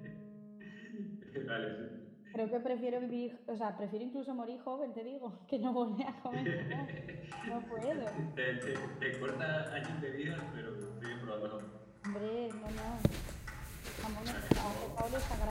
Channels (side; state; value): both; identical; correlation 1.00